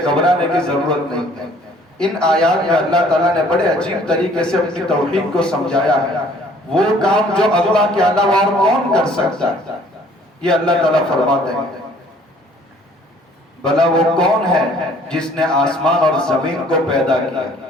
گھبرانے کی ضرورت نہیں ہے. ان آیات میں اللہ تعالیٰ نے بڑے عجیب طریقے سے اپنی توحید کو سمجھایا ہے. وہ کام جو اللہ کے علاوہ اور کون کر سکتا ہے، یہ اللہ تعالیٰ فرماتے ہیں. بھلا وہ کون ہے جس نے آسمان اور زمین کو پیدا کیا؟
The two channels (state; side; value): normal; both; correlation 0.57